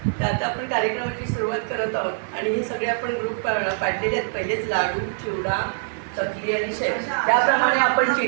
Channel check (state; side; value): silent; left; digital silence